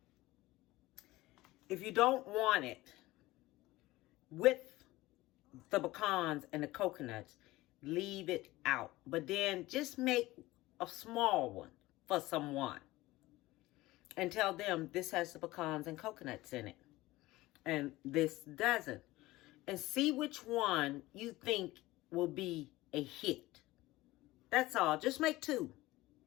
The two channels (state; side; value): quieter; right; 18.6 dB